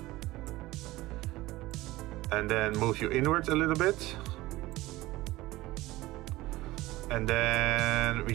And then move you inwards a little bit. And then we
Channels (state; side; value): quieter; left; 18.3 dB